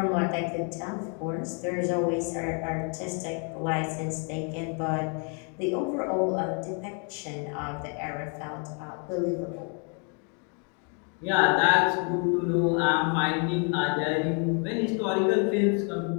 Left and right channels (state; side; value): quieter; right; 38.9 dB